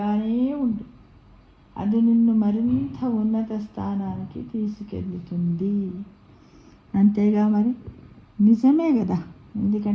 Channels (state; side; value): identical; both; correlation 1.00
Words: ఉండు, అది నిన్ను మరింత ఉన్నత స్థానానికి తీసుకెళ్తుంది. అంతేగా మరి, నిజమే కదా.